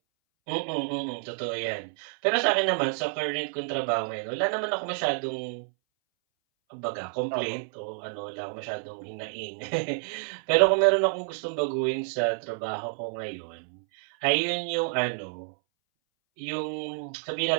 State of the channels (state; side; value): silent; left; 59 dB below the other